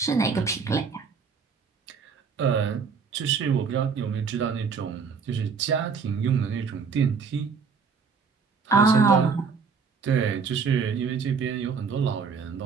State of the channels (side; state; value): left; quieter; 5.7 dB